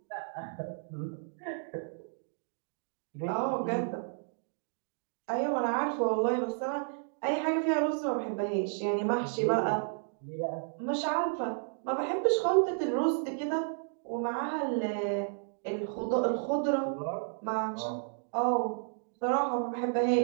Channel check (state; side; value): silent; left; digital silence